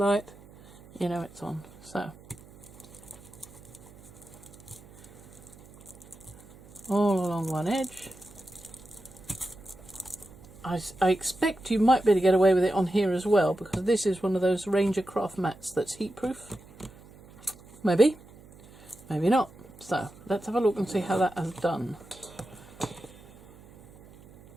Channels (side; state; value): right; noise; hum, 22 dB below the sound